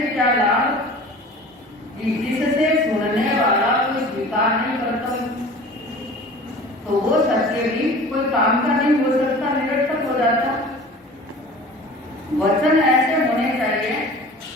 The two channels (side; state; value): both; normal; correlation 0.42